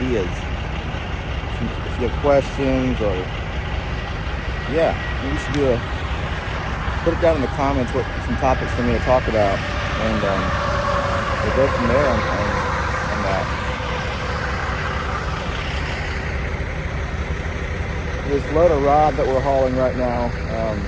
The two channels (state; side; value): identical; both; correlation 1.00